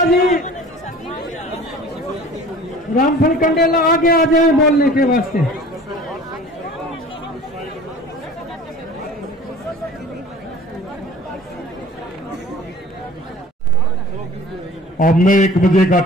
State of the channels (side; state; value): both; normal; correlation 0.45